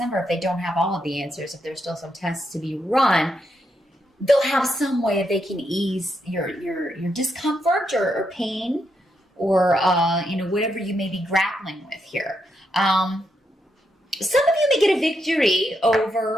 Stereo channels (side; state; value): both; normal; correlation 0.81